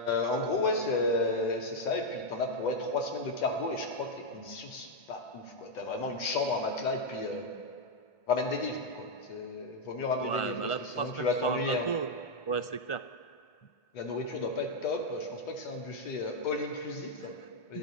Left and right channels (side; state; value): right; late; 1.4 ms